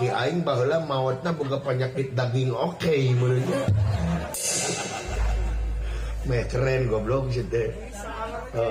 aing baheula maotna boga penyakit daging oke menurutnya meh keren goblok sih teh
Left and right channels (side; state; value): both; identical; correlation 1.00